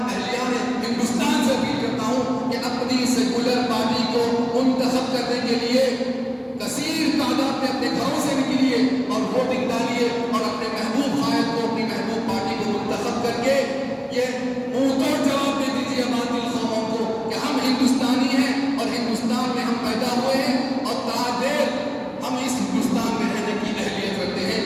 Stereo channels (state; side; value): identical; both; correlation 1.00